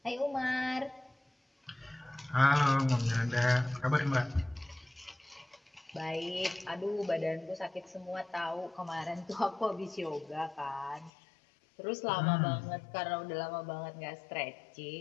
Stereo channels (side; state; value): right; drops out; at 11.1 s